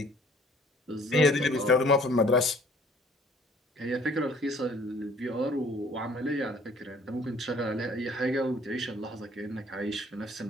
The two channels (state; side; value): normal; both; correlation 0.56